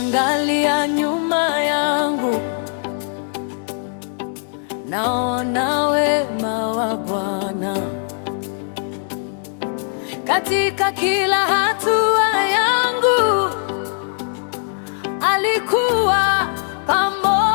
nyuma yangu, naona wema wa Bwana katika kila hatua yangu. Alikuwa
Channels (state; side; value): silent; right; 66 dB below the other